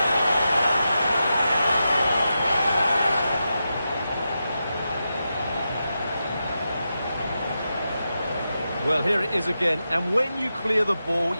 Well, here it is again, and when you clear the ball,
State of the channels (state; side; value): inverted; both; correlation -0.89